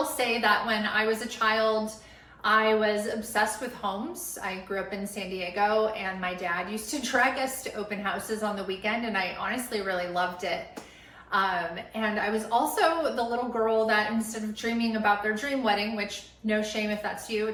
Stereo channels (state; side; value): identical; both; correlation 1.00